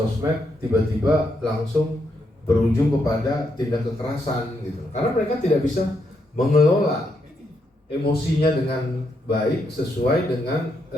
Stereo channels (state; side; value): normal; both; correlation 0.79